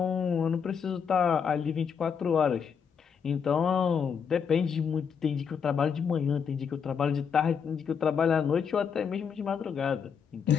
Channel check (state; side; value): quieter; right; 6.8 dB